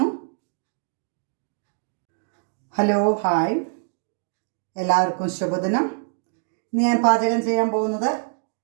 ഹലോ, ഹായ്, എല്ലാവർക്കും ശുഭദിനം. ഇന്ന് ഞാൻ പാചകം ചെയ്യാൻ പോകുന്നത്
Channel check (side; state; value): left; silent; digital silence